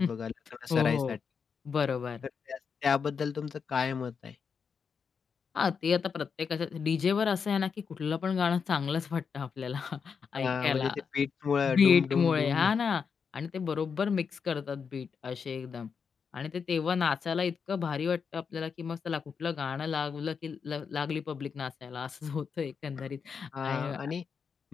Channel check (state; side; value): quieter; right; 6.1 dB